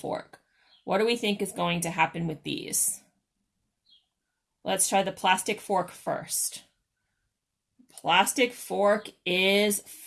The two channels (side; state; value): both; identical; correlation 1.00